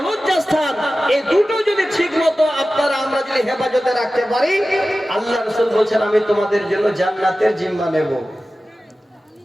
লজ্জাস্থান। এই দুটো যদি ঠিক মতো আপনারা আমরা যদি হেফাজতে রাখতে পারি, আল্লাহ রাসূল বলছেন আমি তোমাদের জন্য জান্নাতের জিম্মা নেব।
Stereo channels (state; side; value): normal; both; correlation 0.95